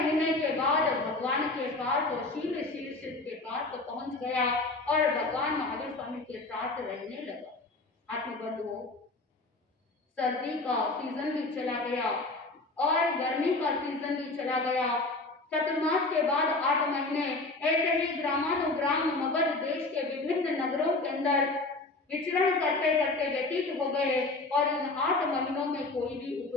के बाद भगवान के पास वो शील शीर्ष के पास पहुंच गया और भगवान महावीर स्वामी के साथ रहने लगा। आत्मबंधुओं, सर्दी का सीजन भी चला गया और गर्मी का सीजन भी चला गया। चतुर्मास के बाद 8 महीने ऐसे ही ग्रामानुग्राम मगध देश के विभिन्न नगरों के अंदर विचरण करते करते व्यतीत हो गए और इन 8 महीनों में कोई भी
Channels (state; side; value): quieter; right; 3.2 dB